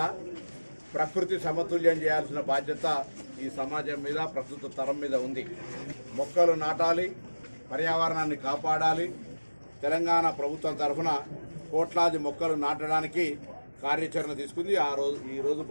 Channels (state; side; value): inverted; both; correlation -1.00